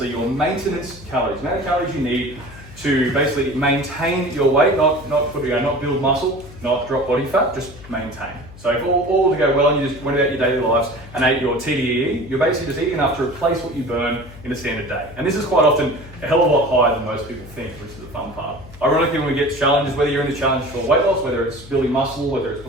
your maintenance calories, the amount of calories you need to basically maintain your weight, not build muscle, not drop body fat, just maintain. So if all to go well and you just went about your daily lives and ate your TDEE, you're basically just eating enough to replace what you burn in a standard day. And this is quite often a hell of a lot higher than most people think, which is the fun part. Ironically, when we get challenges, whether you're in the challenge for weight loss, whether it's building muscle, whether it's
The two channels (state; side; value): noise; left; hum, 18 dB below the sound